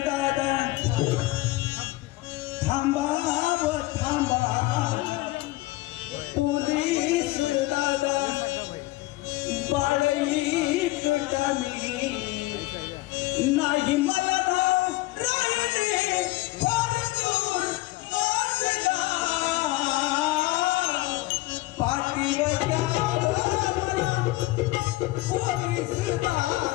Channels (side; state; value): right; quieter; 19.5 dB